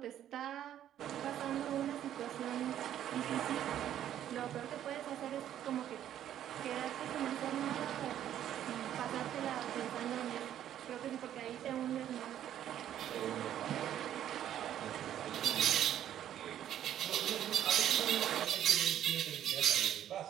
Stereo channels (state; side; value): quieter; left; 11.0 dB